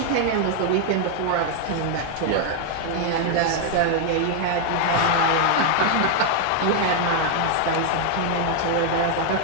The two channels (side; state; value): both; different; correlation 0.00